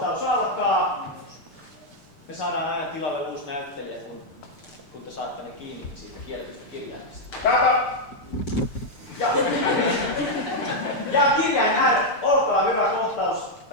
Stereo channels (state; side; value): late; right; 6.7 ms